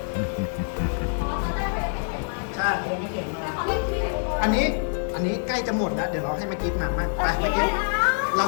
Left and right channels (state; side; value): silent; right; digital silence